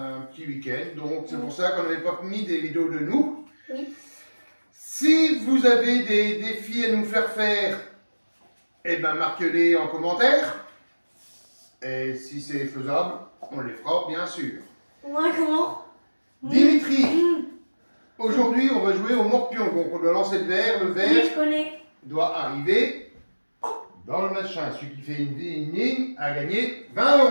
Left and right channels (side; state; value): both; inverted; correlation -1.00